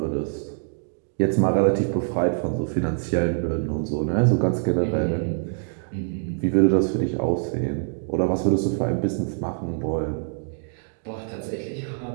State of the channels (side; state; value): left; silent; digital silence